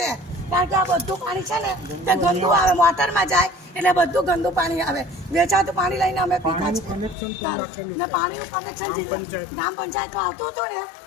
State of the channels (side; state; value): right; drops out; at 7.2 s